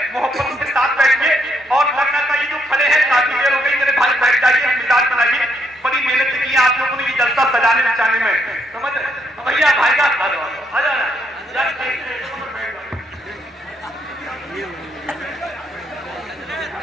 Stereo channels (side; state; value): both; normal; correlation 0.74